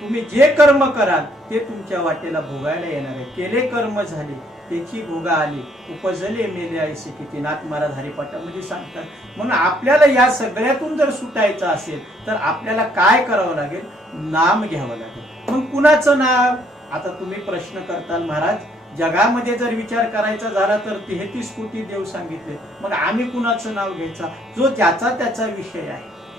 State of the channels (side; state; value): both; normal; correlation 0.66